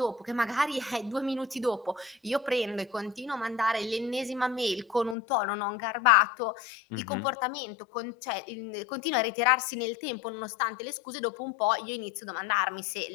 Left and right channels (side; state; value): right; drops out; at 5.2 s